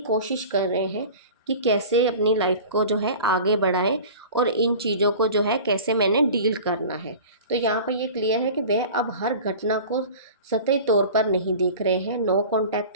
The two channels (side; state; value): both; inverted; correlation -0.39